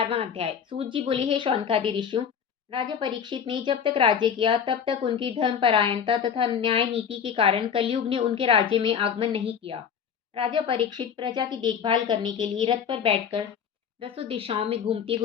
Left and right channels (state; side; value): quieter; right; 7.5 dB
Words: अध्याय। सूत जी बोले, हे शौनकादि ऋषियों, राजा परीक्षित ने जब तक राज्य किया तब तक उनकी धर्मपरायणता तथा न्याय नीति के कारण कलयुग ने उनके राज्य में आगमन नहीं किया। राजा परीक्षित प्रजा की देखभाल करने के लिए रथ पर बैठकर दसों दिशाओं में घूमते